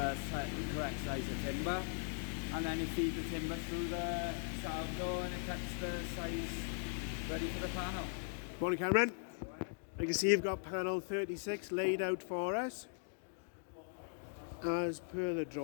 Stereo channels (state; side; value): silent; right; digital silence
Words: correct size of timber. And then you feed the timber through the Salvador and it cuts the size ready for the panel. Morning, Cameron. I can see you've got panel 36 laid out for us as per the